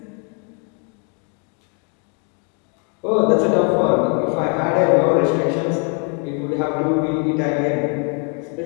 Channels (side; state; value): right; quieter; 38.8 dB